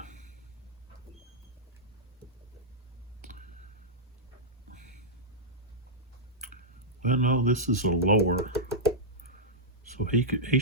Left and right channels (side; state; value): both; normal; correlation -0.09